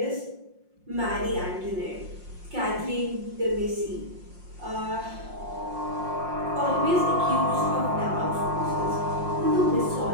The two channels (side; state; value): left; late; 5.6 ms